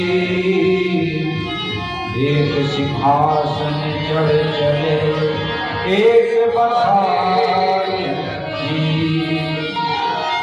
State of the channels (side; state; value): both; identical; correlation 1.00